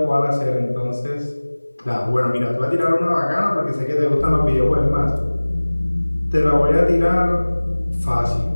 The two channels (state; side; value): inverted; both; correlation -1.00